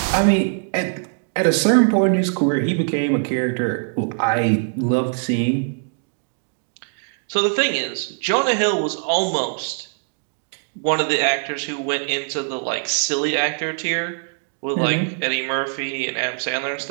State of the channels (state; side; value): silent; left; 64 dB below the other